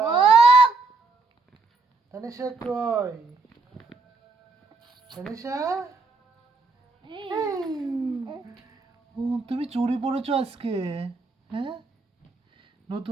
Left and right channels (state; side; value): quieter; left; 3.7 dB